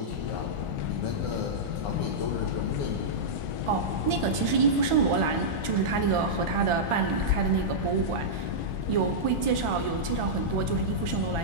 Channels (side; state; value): left; late; 1.4 ms